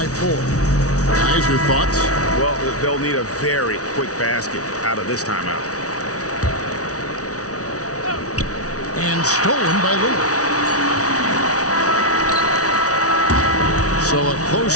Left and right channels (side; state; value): right; late; 0.67 ms